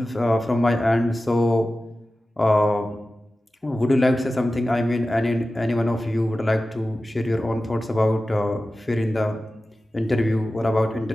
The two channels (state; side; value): normal; both; correlation 0.95